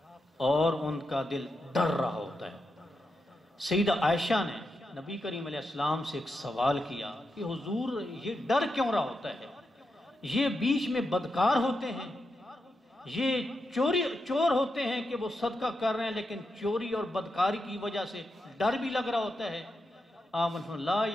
اور ان کا دل ڈر رہا ہوتا ہے. سیدہ عائشہ نے نبی کریم علیہ السلام سے ایک سوال کیا کہ حضور یہ ڈر کیوں رہا ہوتا ہے؟ یہ بیچ میں بدکار ہوتے ہیں، یہ چور ہوتے ہیں کہ وہ صدقہ کر رہے ہیں لیکن چوری اور بدکاری کی وجہ سے ڈر بھی لگ رہا ہوتا ہے. آمن لا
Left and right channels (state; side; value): normal; both; correlation 0.86